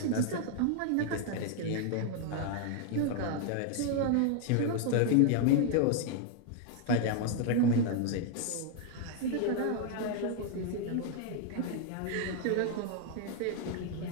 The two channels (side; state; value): both; different; correlation 0.00